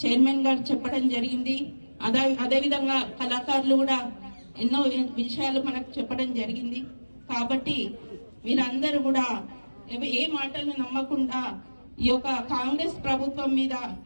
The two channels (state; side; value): inverted; both; correlation -1.00